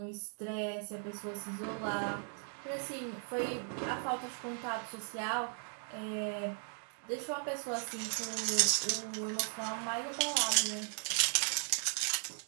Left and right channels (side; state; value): left; silent; 53 dB below the other